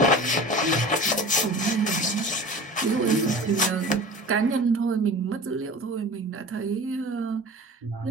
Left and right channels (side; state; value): both; normal; correlation 0.37